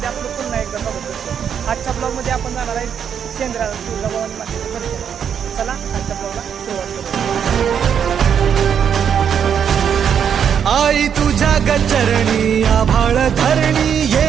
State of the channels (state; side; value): quieter; left; 8.0 dB